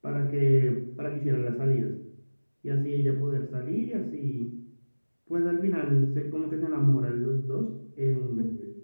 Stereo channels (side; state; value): both; inverted; correlation -1.00